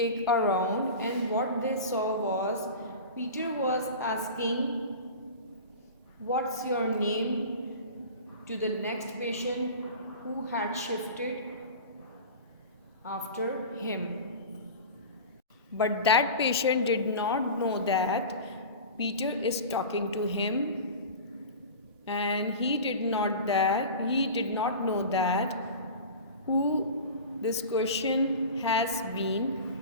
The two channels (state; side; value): inverted; both; correlation -0.33